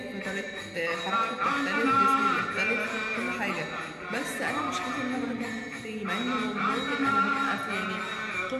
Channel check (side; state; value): both; identical; correlation 1.00